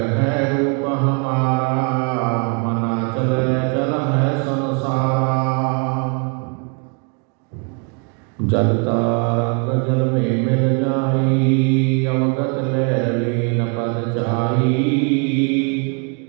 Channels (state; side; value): quieter; left; 37.7 dB